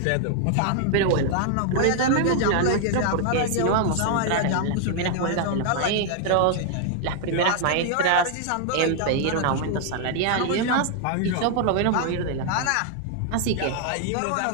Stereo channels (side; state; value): both; different; correlation 0.00